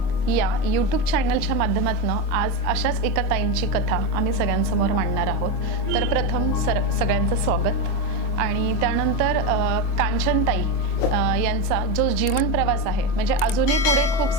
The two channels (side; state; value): right; late; 24 ms